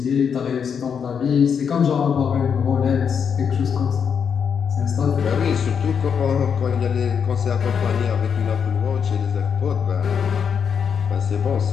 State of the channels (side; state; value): right; quieter; 7.0 dB